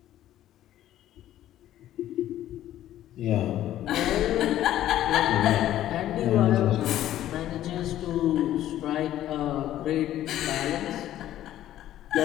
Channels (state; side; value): quieter; right; 12.8 dB